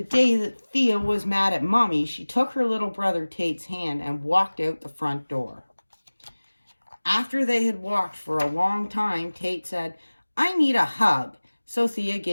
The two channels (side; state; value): both; inverted; correlation -1.00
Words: day that Thea was mad at Mommy, she took her little brother Tate's hand and walked out the front door. After they had walked for a long time, Tate said, "I need a hug." So Thea